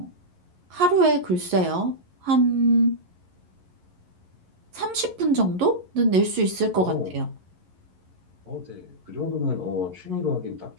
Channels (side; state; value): left; late; 11 ms